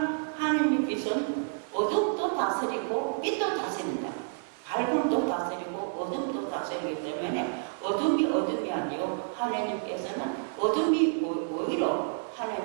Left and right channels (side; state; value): left; silent; 58 dB below the other